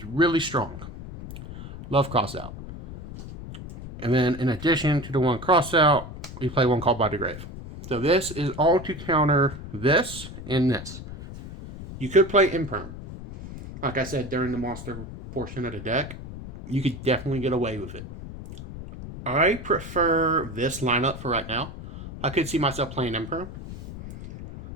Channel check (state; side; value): noise; left; rumble, 11 dB below the sound